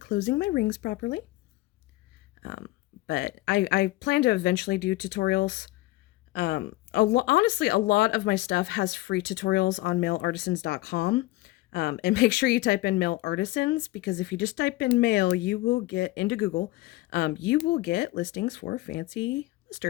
my rings properly. Um, but I plan to eventually do tutorials. Honestly, a lot of my stuff has free tutorials on mailartisans.com. And make sure you type in male artisans, because if you just type in male, you will get into Google. You will get listings for fancy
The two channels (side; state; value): right; quieter; 18.6 dB